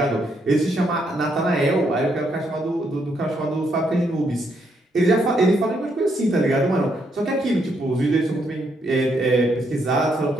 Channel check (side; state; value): both; normal; correlation 0.75